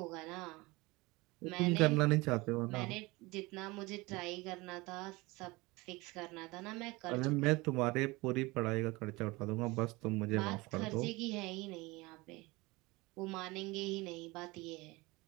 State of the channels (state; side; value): quieter; left; 23.0 dB